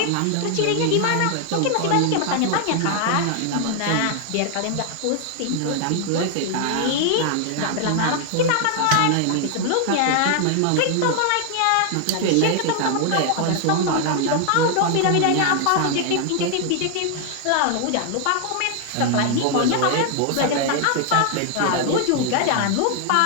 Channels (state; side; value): different; both; correlation 0.00